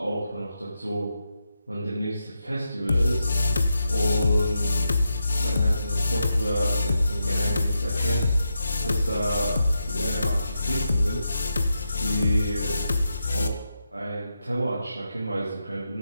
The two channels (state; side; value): inverted; both; correlation -0.86